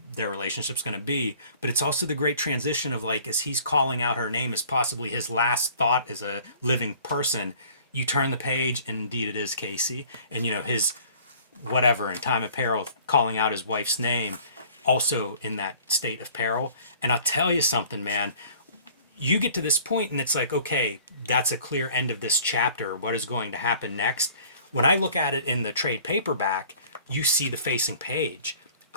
their relationship's going to be, but it's also the great transition of like as he's calling out her name as possibly his last thought as a living person, you turn the page and indeed it is Casey, and you know his whatever in time of peril calling out his wife's name also in that state of peril. And I'll tell you something, man, you get to this point and it's like, okay, that's a clear end of this chapter. What is going to happen next? When I look at it in the trade paperback, you see the facing page.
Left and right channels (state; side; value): inverted; both; correlation -0.52